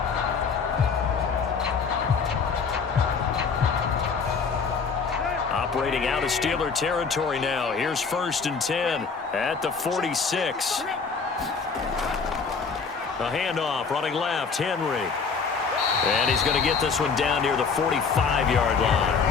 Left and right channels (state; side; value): quieter; right; 5.3 dB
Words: Operating out of Steeler territory now. Here's 1st and 10 at the 46. A handoff, running left, Henry. And he's going to get this one down near the 45-yard line.